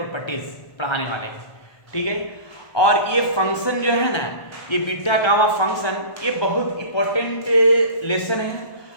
पढ़ाने वाले हैं। ठीक है, और ये फंक्शन जो है ना, ये बीटा गामा फंक्शन ये बहुत इंपॉर्टेंट लेसन है।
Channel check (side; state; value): right; late; 1.3 ms